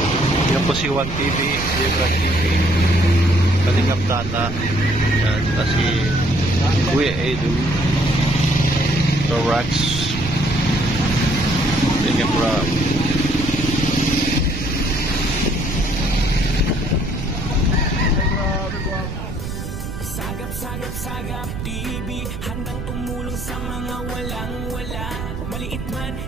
yan po si Juan TV, Jebra TV, Kalingap Tata, at si Kuya Edu, Torax, Jebra. Sagap TV, handang tumulong sa mga walang-wala. Maliit man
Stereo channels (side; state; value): right; noise; rumble, 7 dB below the sound